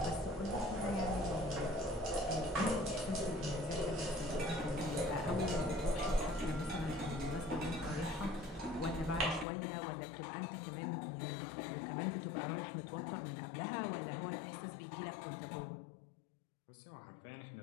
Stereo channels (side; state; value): right; drops out; at 9.5 s